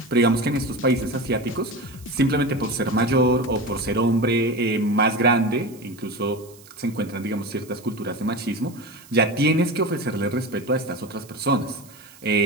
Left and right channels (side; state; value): right; noise; hiss, 23 dB below the sound